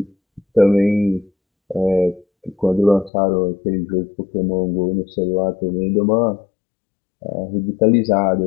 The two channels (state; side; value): drops out; right; at 3.1 s